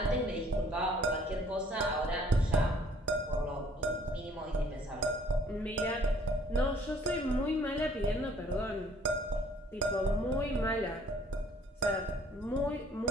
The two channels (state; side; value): normal; both; correlation 0.58